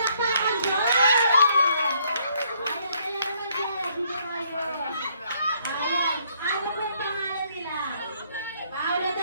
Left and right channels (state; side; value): inverted; both; correlation -0.67